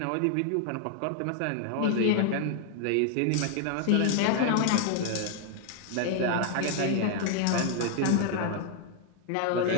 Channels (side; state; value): both; different; correlation 0.00